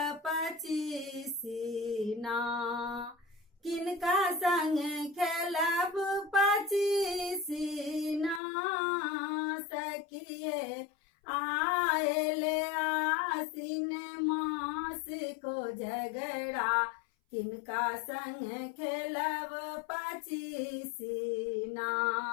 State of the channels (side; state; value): right; drops out; at 8.4 s